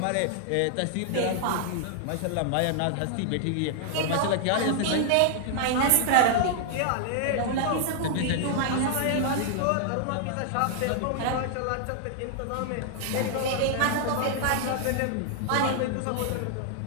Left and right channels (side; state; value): both; different; correlation 0.00